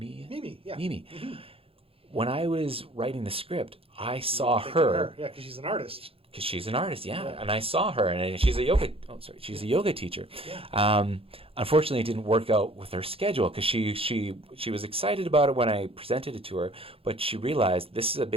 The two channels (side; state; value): left; late; 0.27 ms